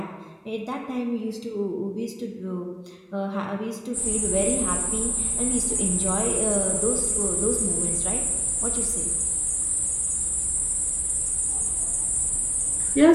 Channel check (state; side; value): identical; both; correlation 1.00